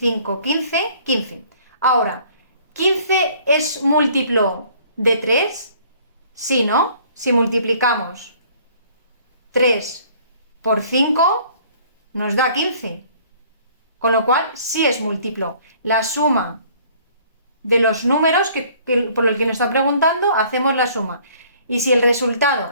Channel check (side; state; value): both; inverted; correlation -0.56